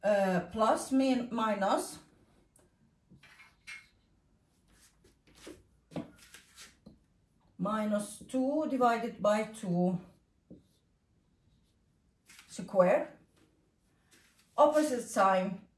plus minus minus 2 divided by 2 square, opposite sign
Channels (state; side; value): identical; both; correlation 1.00